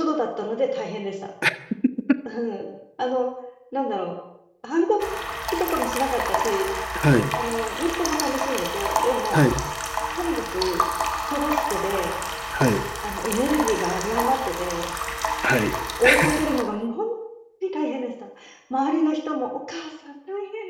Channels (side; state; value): both; identical; correlation 1.00